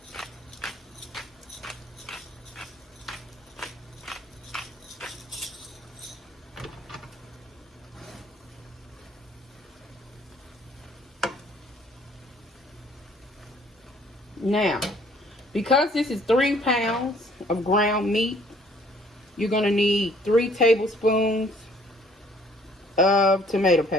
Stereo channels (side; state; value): both; normal; correlation 0.59